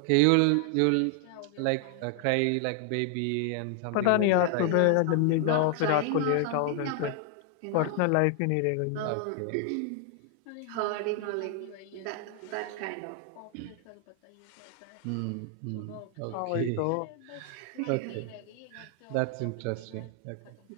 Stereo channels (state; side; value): different; both; correlation 0.00